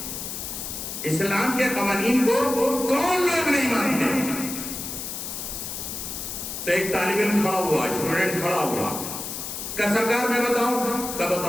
اسلام کے قوانین کو کون لوگ نہیں مانتے. تو ایک طالب علم کھڑا ہوا, اسٹوڈنٹ کھڑا ہوا, کہ سرکار میں بتاؤں, کیا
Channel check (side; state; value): left; noise; hiss, 6 dB below the sound